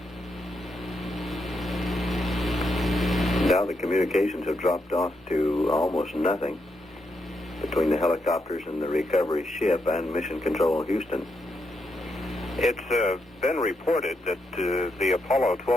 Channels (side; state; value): both; normal; correlation 0.81